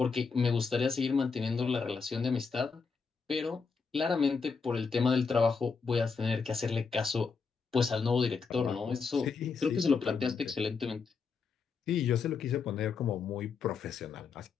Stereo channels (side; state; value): right; quieter; 5.2 dB